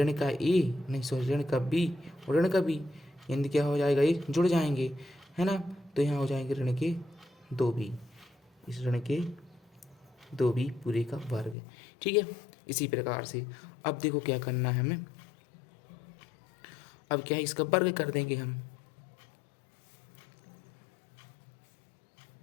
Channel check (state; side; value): drops out; right; at 11.6 s